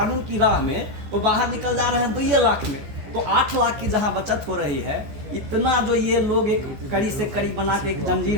की राह में तो बाहर निकल जा रहे हैं 2 लाख में। तो 8 लाख की जहां बचत हो रही है, इतना जो ये लोग एक कड़ी से कड़ी बना के एक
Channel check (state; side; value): late; left; 14 ms